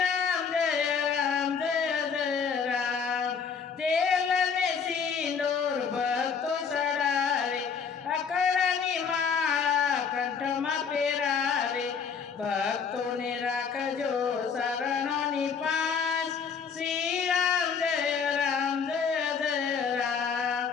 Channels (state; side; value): quieter; right; 6.3 dB